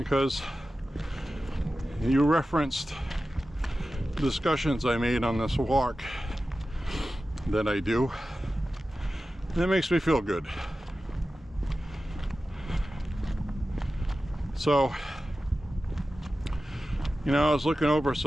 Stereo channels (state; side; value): normal; both; correlation 0.94